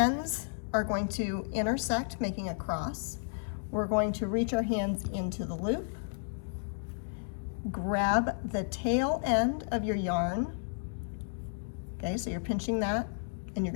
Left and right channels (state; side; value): silent; right; digital silence